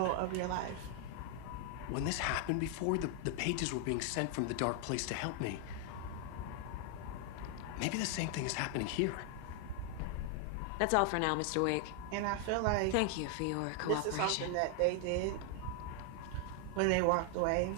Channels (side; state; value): both; different; correlation 0.00